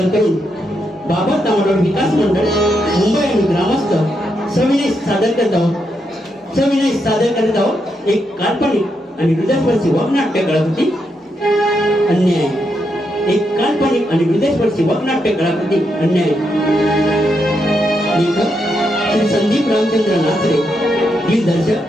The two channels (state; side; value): normal; both; correlation 0.81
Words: करून बाबा तांबडोळ विकास मंडळ मुंबई आणि ग्रामस्थ सविनय सादर करत आहोत एक काल्पनिक आणि हृदयस्पर्शी वगनाट्य कलाकृती अन्याय। एक काल्पनिक आणि हृदयस्पर्शी वगनाट्य कलाकृती अन्याय। लेखक श्री संदीप रामचंद्र नाचरे,